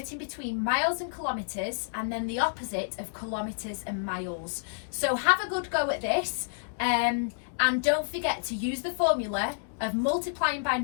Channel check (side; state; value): right; silent; digital silence